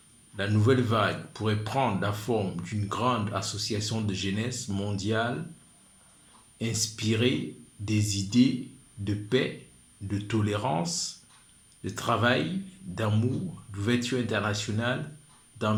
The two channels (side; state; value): both; identical; correlation 1.00